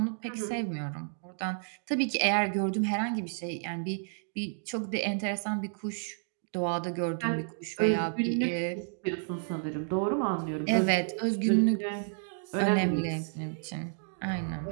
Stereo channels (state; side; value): silent; left; digital silence